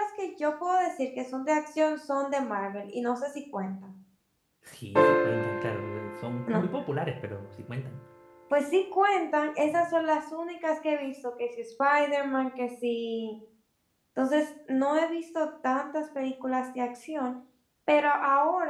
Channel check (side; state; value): both; identical; correlation 1.00